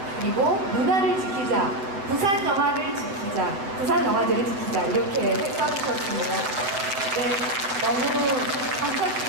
그리고 문화를 지키자, 부산 영화를 지키자, 부산 영화제를 지키자 이렇게 써주셨습니다. 네, 너무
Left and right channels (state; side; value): late; left; 7.8 ms